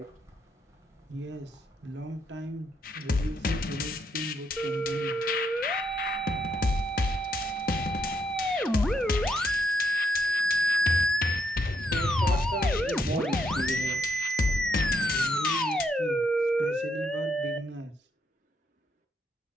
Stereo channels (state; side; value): normal; both; correlation 0.76